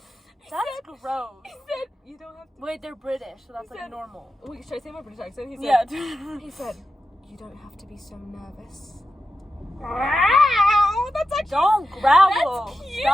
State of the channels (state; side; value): normal; both; correlation 0.90